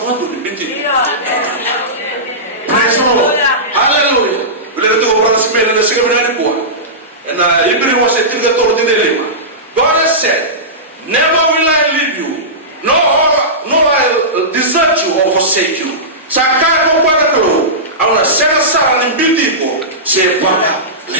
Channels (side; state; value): both; normal; correlation -0.18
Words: mo do binti praise the Lord hallelujah ule to ko brother smell na sega bina ni na ibri was a tinga to de lema God has said never will I leave you no I desert you or forsake you saka ko kwa ko awna sera sara ni binti ko se baba